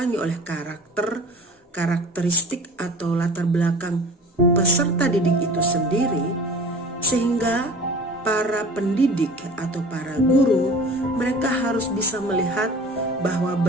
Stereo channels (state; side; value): normal; both; correlation 0.42